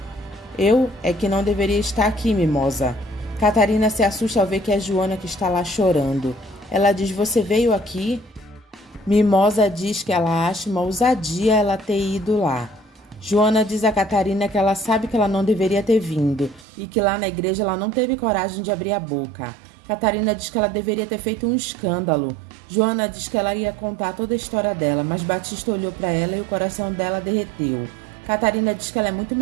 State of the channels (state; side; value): drops out; left; at 16.7 s